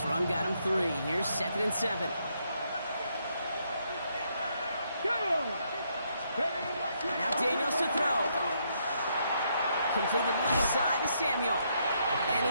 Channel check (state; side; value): inverted; both; correlation -0.75